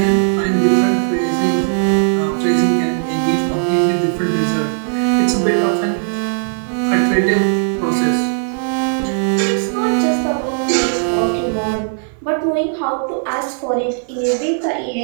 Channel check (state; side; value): silent; left; 58 dB below the other